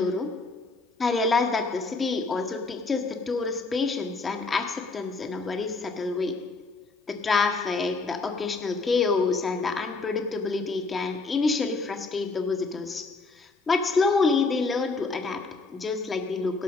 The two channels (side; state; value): right; quieter; 3.9 dB